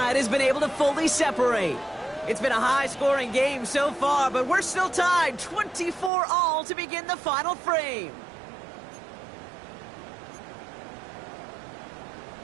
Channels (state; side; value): drops out; left; at 6.1 s